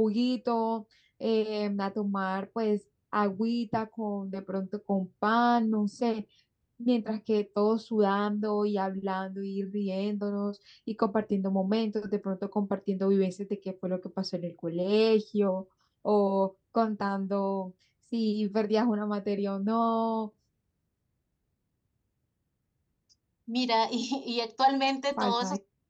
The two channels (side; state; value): both; identical; correlation 1.00